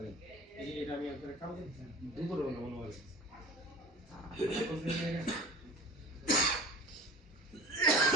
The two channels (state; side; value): normal; both; correlation 0.39